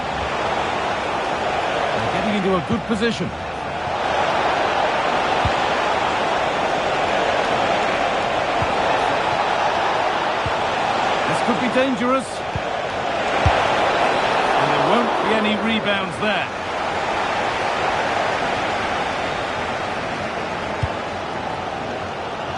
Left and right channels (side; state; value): both; identical; correlation 1.00